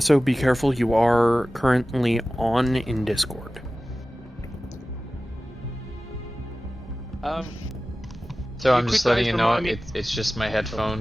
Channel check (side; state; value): both; normal; correlation 0.96